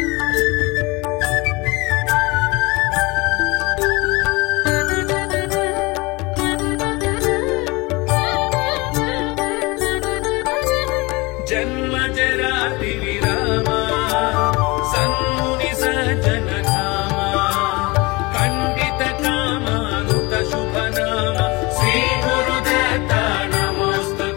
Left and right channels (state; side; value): quieter; right; 24.6 dB